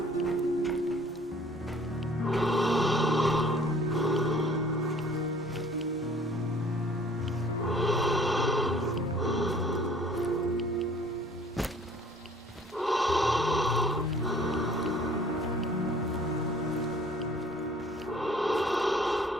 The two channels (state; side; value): normal; both; correlation 0.54